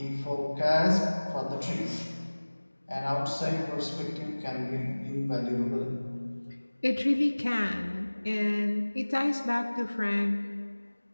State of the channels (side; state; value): both; inverted; correlation -1.00